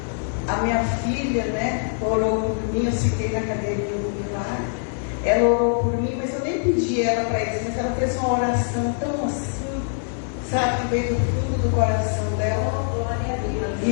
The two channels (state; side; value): silent; right; digital silence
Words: a minha filha, né, orou por mim, eu sentei na cadeirinha do milagre. Ela orou por mim, mas eu nem pedi ela para isso, mas ela fez uma oração tão assim, sabe, que veio do fundo do coração dela.